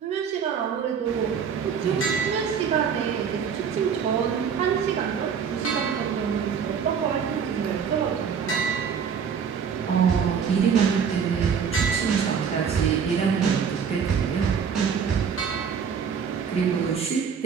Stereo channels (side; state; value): left; quieter; 6.8 dB